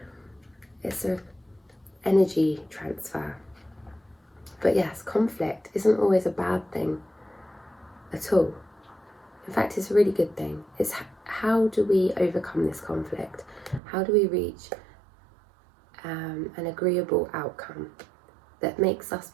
It's an energy transfer. But yes, conflict isn't always a bad thing at all. In fact, it's a really good thing. It's how do we overcome this conflict? How do we reach an agreeable outcome that makes us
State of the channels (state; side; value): drops out; left; at 13.8 s